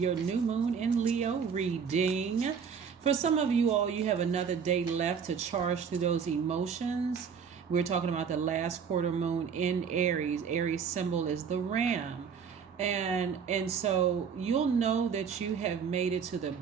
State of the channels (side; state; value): left; quieter; 6.7 dB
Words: new moon in Leo reading. For some of you all, you have another day left to charge through those emotions. We're talking about the last quarter moon in Aries. Aries symbol is the ram. And so you'll know that you have made it to the